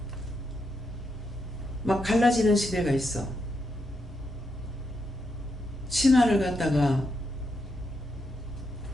막 갈라지는 시대가 있어. 치마를 갖다가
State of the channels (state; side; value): normal; both; correlation 0.82